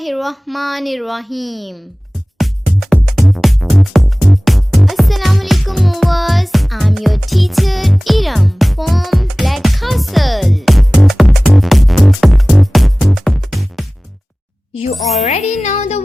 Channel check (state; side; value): normal; both; correlation 0.98